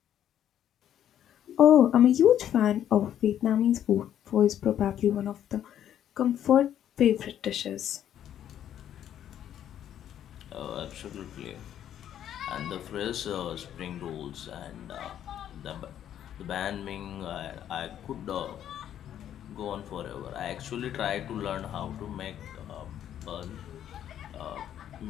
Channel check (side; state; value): right; quieter; 10.5 dB